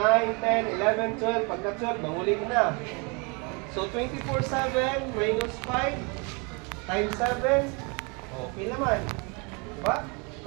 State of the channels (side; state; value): left; quieter; 31.8 dB